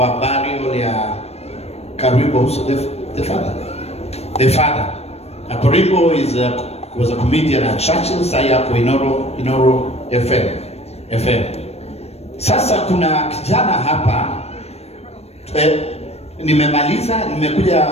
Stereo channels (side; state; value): right; late; 0.31 ms